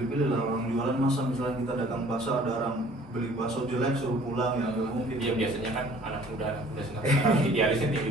lah orang jualan. Masa misalnya kita dagang bakso ada orang beli bakso jelek suruh pulang, ya nggak mungkin. Dia biasanya kan anak muda sekarang idealisnya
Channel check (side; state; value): both; normal; correlation 0.53